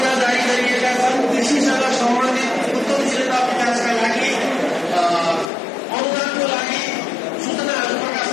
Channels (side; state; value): right; drops out; at 5.5 s